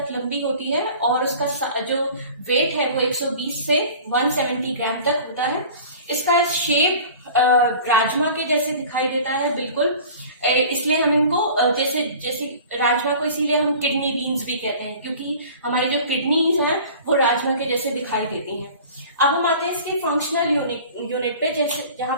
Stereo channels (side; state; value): both; inverted; correlation -0.43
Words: लंबी होती है, और उसका जो वेट है वो 120 से 170 ग्राम तक होता है। इसका शेप राजमा के जैसे दिखाई देता है बिल्कुल, इसलिए हम इनको जैसे जैसे राजमा को इसीलिए हम किडनी बीन्स भी कहते हैं, क्योंकि हमारी जो किडनीज हैं वो राजमा के जैसे दिखाई देती हैं। अब हम आते हैं इसके फंक्शनल यूनिट पे, जैसे जहाँ